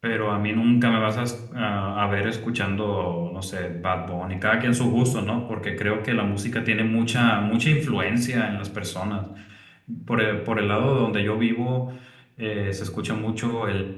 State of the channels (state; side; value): identical; both; correlation 1.00